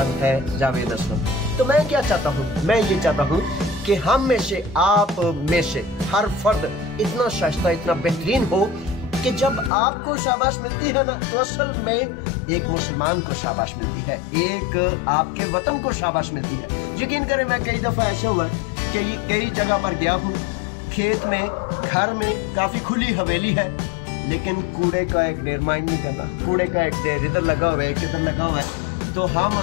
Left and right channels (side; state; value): right; drops out; at 9.7 s